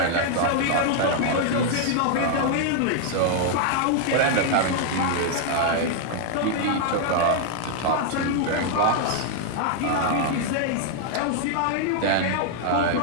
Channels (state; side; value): different; both; correlation 0.00